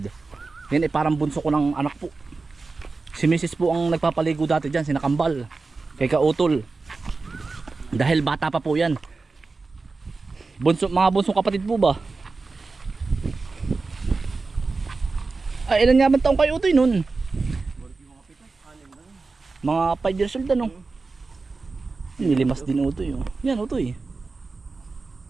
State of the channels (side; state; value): left; quieter; 4.0 dB